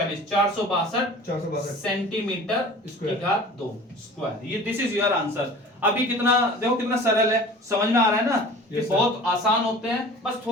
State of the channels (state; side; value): normal; both; correlation 0.42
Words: 462 सेंटीमीटर की घात 2 स्क्वायर। ये दिस इज योर आंसर। अभी कितना देखो कितना सरल है, समझ में आ रहा है ना कि बहुत आसान होते हैं। बस